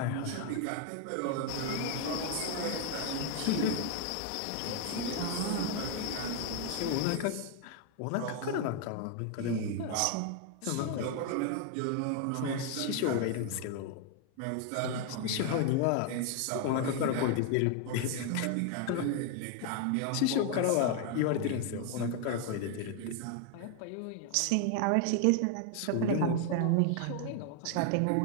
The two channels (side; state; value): both; different; correlation 0.00